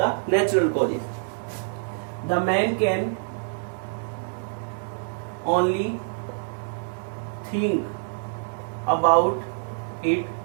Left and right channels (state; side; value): silent; left; 61 dB below the other